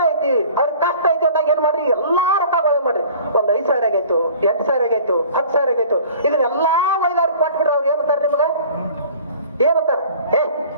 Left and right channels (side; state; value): both; inverted; correlation -0.47